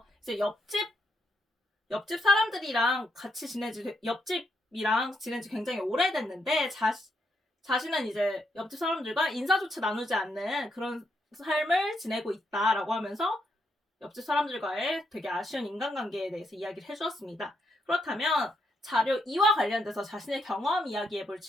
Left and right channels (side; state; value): both; normal; correlation 0.78